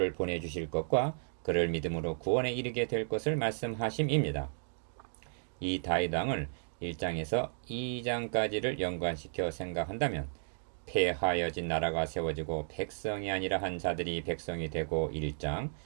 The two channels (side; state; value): left; silent; digital silence